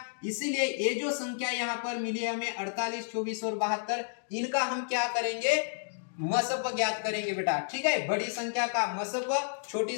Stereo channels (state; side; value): silent; right; digital silence